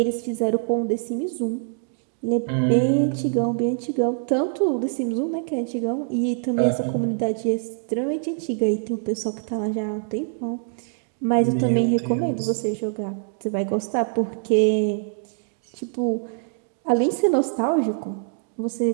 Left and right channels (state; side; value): silent; left; 62 dB below the other